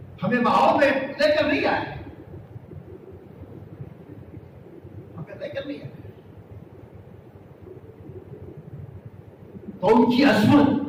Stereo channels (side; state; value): both; identical; correlation 1.00